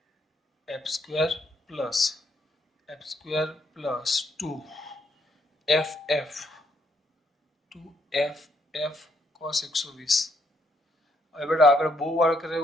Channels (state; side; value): normal; both; correlation 0.73